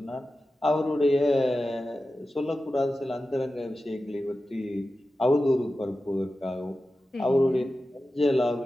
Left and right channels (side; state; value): both; normal; correlation 0.93